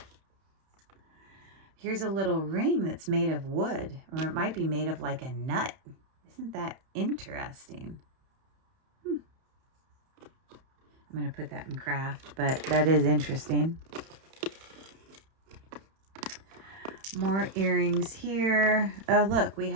Here's a little ring that's made of wood, or it might be made of like a nut. Isn't that interesting? I'm going to put that in craft, but that is interesting. More earrings here. Oh, look, we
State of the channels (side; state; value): left; late; 31 ms